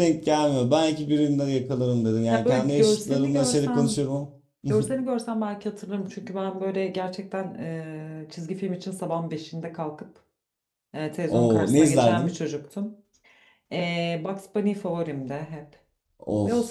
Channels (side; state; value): both; identical; correlation 1.00